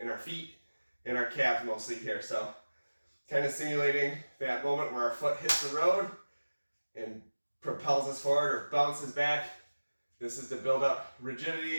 our feet and our calves mostly here. So kind of simulating that moment where our foot hits the road and propels us forward or bounces back. This is to build up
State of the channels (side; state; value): both; inverted; correlation -1.00